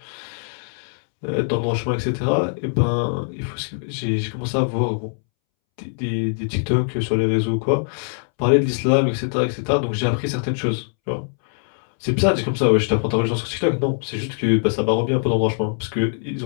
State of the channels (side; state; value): right; silent; 64 dB below the other